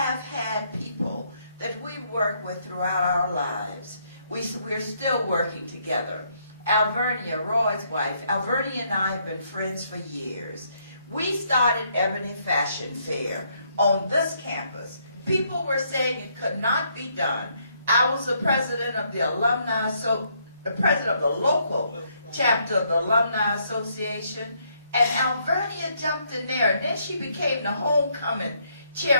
had people that we work with throughout our lives. We're still working together. Alvernia, Roy's wife, Alvernia and I have been friends for years. We started Ebony Fashion Fair on this campus. People were saying it could not be done. I was the president of the alumni, the president of the local chapter of the Alumni Association, and Alvernia jumped in there, and then she became the homecoming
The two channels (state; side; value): inverted; both; correlation -0.72